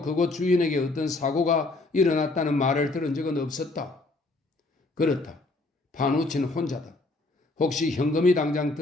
주인에게 어떤 사고가 일어났다는 말을 들은 적은 없었다. 그렇다. 파누치는 혼자다. 혹시 현금이 당장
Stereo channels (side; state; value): right; quieter; 3.1 dB